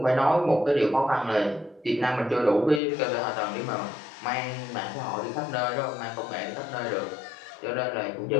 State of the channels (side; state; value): right; drops out; at 2.8 s